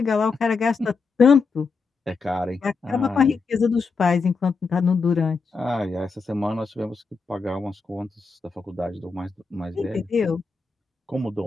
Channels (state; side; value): quieter; right; 4.6 dB